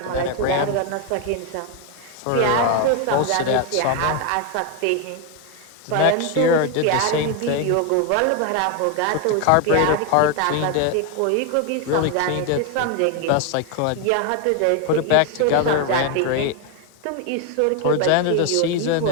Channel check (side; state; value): both; different; correlation 0.01